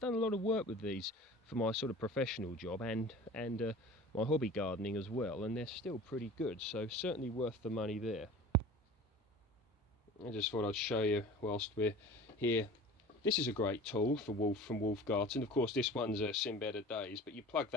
a lot of work with these for my sort of professional job and my hobby gardening as well, and they're still pretty good, so certainly worth the money there. I just thought I'd show you whilst we're here. This is a great tool from Wolf Garten. Of course, this one's seen better days, but you plug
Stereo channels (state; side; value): normal; both; correlation 0.40